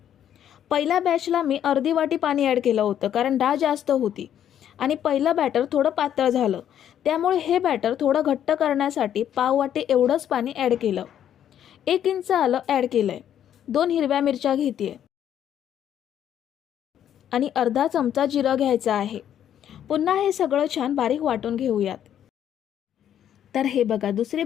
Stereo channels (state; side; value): quieter; right; 10.1 dB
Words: पहिल्या बॅचला मी अर्धी वाटी पाणी ॲड केलं होतं कारण डाळ जास्त होती आणि पहिलं बॅटर थोडं पातळ झालं. त्यामुळे हे बॅटर थोडं घट्ट करण्यासाठी पाव वाटी एवढंच पाणी ॲड केलं. 1 इंच आलं ॲड केलंय. 2 हिरव्या मिरच्या घेते आणि अर्धा चमचा जिरं घ्यायचं आहे. पुन्हा हे सगळं छान बारीक वाटून घेऊयात. तर हे बघा, दुसरी